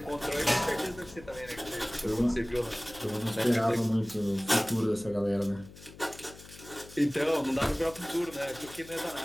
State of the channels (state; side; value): noise; left; hum, 18 dB below the sound